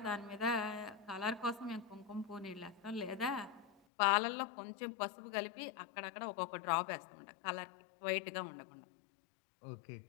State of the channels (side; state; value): right; drops out; at 3.8 s